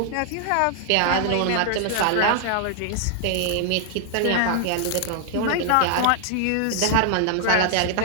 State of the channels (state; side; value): different; both; correlation 0.00